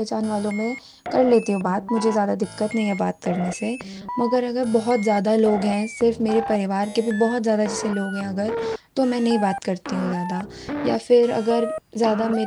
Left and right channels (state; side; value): identical; both; correlation 1.00